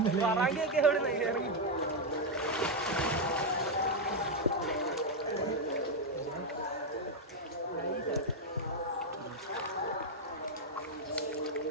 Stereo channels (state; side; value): normal; both; correlation 0.02